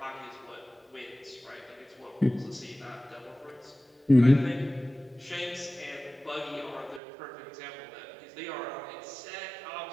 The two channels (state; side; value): drops out; left; at 7.0 s